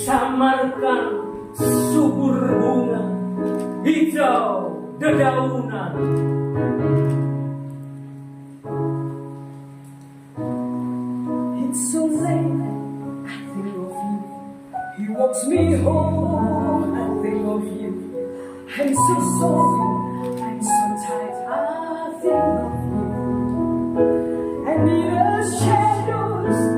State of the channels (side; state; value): both; identical; correlation 1.00